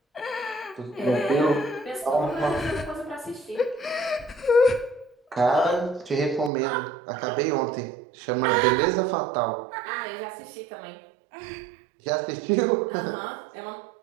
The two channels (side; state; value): left; drops out; at 6.5 s